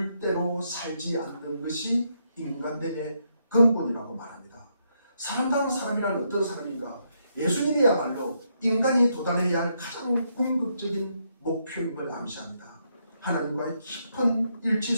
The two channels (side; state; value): both; inverted; correlation -0.78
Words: 대로 살지 않는 것이 인간됨의 근본이라고 말합니다. 사람다운 사람이란 어떤 사람인가? 예수님이야말로 인간이 도달해야 할 가장 궁극적인 목표임을 암시합니다. 하나님과의 깊은 일치